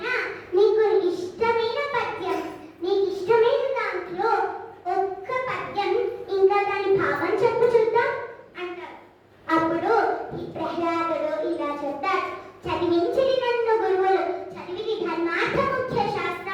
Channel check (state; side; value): identical; both; correlation 1.00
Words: నీకు ఇష్టమైన పద్యం, నీకు ఇష్టమైన దాంట్లో ఒక్క పద్యం ఇంకా దాని భావం చెప్పు చూద్దాం అంటారు. అప్పుడు ఈ ప్రహ్లాదుడు ఇలా చెప్తాడు, చదివించిది నన్ను గురువులు, చదివిది ధర్మార్థ ముఖ్య